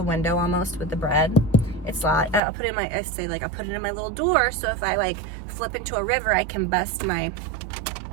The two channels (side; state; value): left; drops out; at 2.4 s